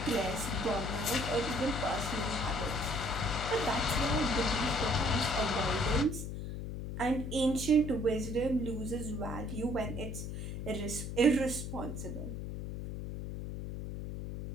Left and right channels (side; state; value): left; noise; hum, 6 dB below the sound